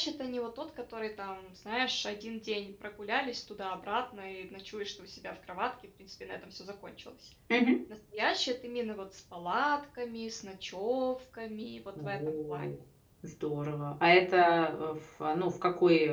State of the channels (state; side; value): identical; both; correlation 1.00